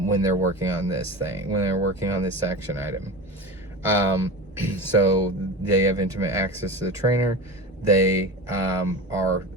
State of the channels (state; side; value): normal; both; correlation 0.28